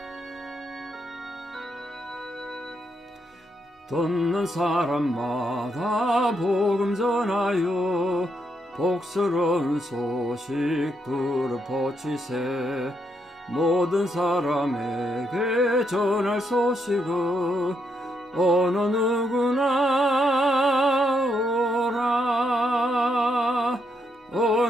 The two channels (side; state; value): both; normal; correlation 0.78